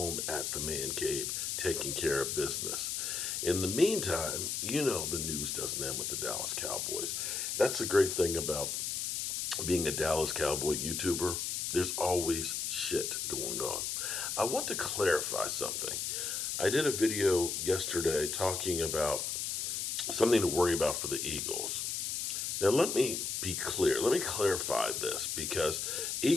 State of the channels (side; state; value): left; noise; hiss, 1 dB below the sound